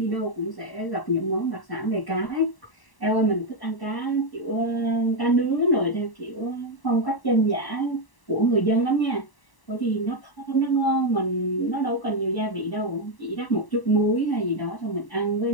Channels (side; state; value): right; late; 1.0 ms